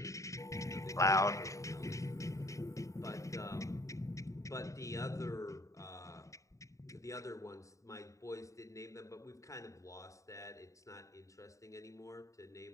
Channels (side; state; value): right; late; 0.16 ms